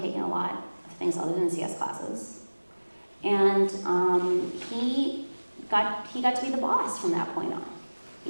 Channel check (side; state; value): both; inverted; correlation -1.00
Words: a lot of things other than CS classes. And he got to be the boss from that point on.